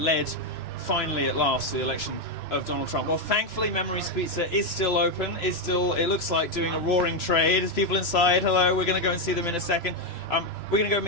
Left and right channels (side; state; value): right; late; 3.0 ms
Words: finally, at last, to the election of Donald Trump. Well, thankfully, Memories Pizza is still open. It looks like doing a roaring trade. There's people inside. Hello, we're going to go and see them in a second. We're going to go